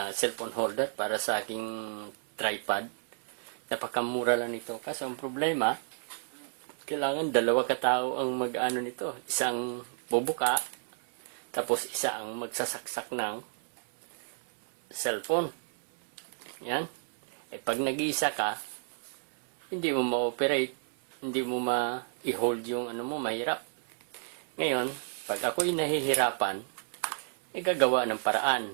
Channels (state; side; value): silent; left; 57 dB below the other